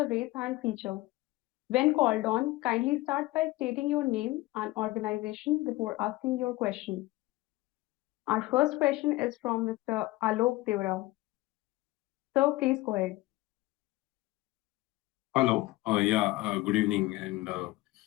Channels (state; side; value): quieter; right; 19.1 dB